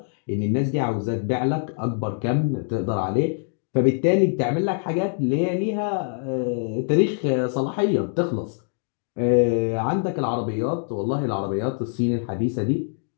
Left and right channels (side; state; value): right; silent; digital silence